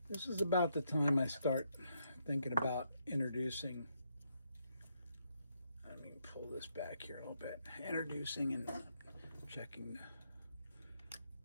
this is about the time I start thinking about introducing. Let me pull this back here a little bit. Introducing and checking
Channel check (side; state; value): both; inverted; correlation -0.77